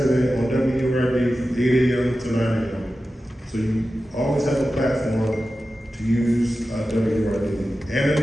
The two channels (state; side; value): normal; both; correlation 0.93